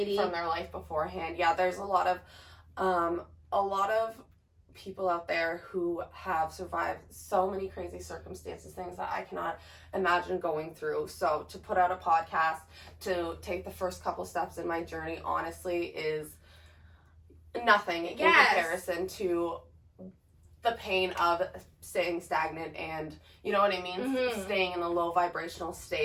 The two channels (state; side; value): identical; both; correlation 1.00